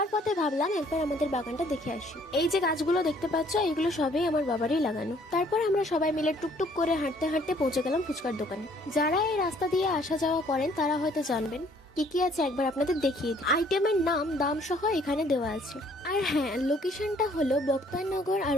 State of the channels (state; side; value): normal; both; correlation 0.61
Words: পথে ভাবলাম একবার আমাদের বাগানটা দেখে আসি। এই যে গাছগুলো দেখতে পাচ্ছ, এগুলো সবই আমার বাবারই লাগানো। তারপর আমরা সবাই মিলে টুকটুক করে হাঁটতে হাঁটতে পৌঁছে গেলাম ফুচকার দোকানে। যারা এই রাস্তা দিয়ে আসা যাওয়া করেন তারা হয়তো জানবেন কি কি আছে, একবার আপনাদের দেখিয়ে দিই। আইটেমের নাম, দাম সহ এখানে দেওয়া আছে। আর হ্যাঁ, লোকেশনটা হলো বক্তারনগর আর